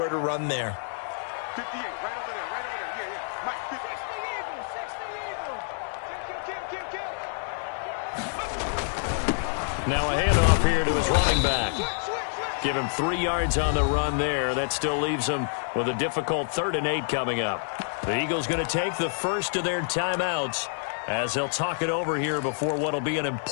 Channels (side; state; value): right; silent; digital silence